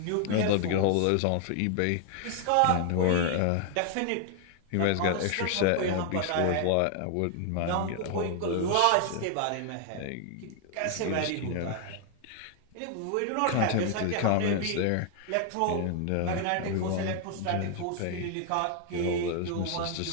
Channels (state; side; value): different; both; correlation 0.00